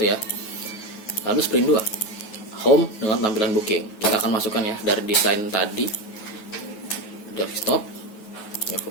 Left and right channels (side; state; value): right; late; 9.3 ms